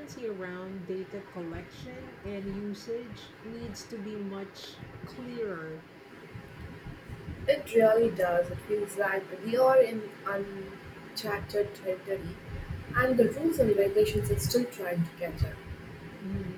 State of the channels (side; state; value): both; identical; correlation 1.00